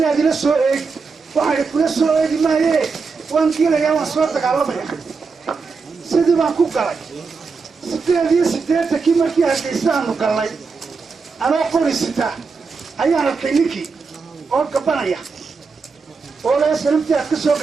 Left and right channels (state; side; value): quieter; left; 4.8 dB